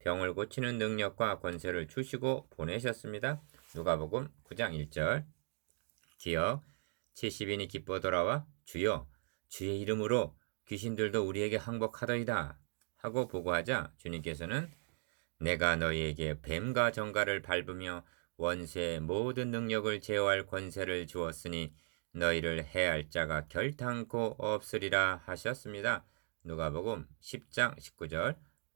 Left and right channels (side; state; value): left; silent; digital silence